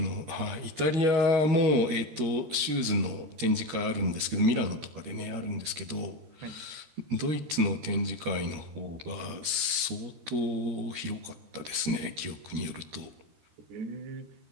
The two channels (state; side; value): late; left; 13 ms